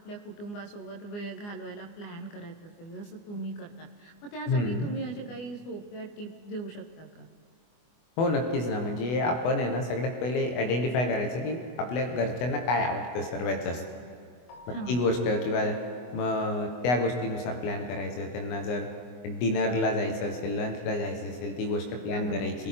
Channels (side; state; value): right; late; 24 ms